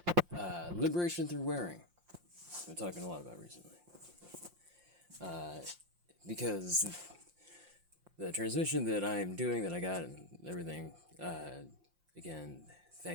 liberation through wearing. We're talking a lot about recently. Because the transmission that I am doing, that I got and everything, again,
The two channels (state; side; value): late; left; 5.7 ms